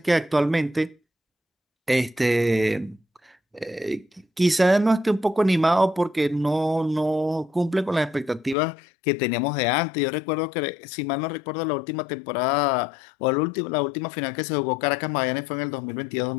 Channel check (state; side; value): drops out; right; at 8.6 s